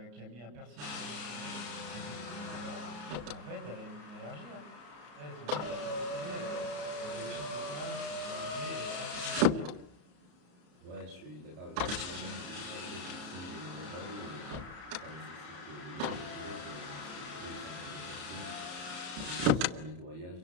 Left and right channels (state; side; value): late; left; 34 ms